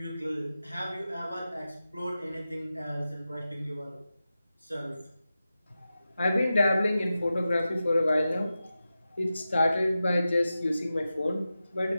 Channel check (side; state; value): both; inverted; correlation -0.93